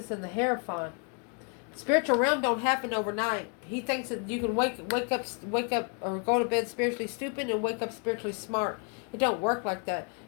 and the Hierophant. Spiritual realm don't happen overnight. He thinks that you can wake up or go to bed spiritually stupid and wake up spiritually smart. It don't work like that.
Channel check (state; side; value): quieter; right; 38.8 dB